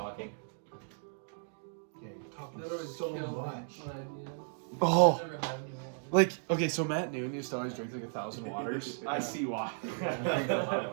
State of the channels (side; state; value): left; silent; digital silence